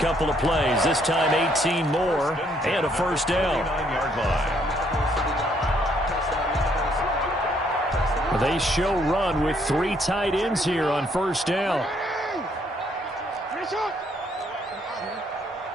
of plays. This time 18 more and a first down. They show run with three tight ends here on first down.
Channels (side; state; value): both; normal; correlation 0.69